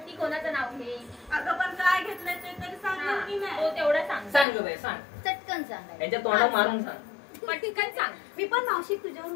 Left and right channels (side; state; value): right; drops out; at 4.5 s